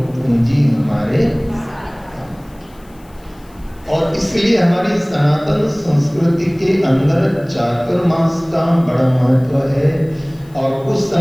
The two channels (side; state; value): left; noise; hiss, 30 dB below the sound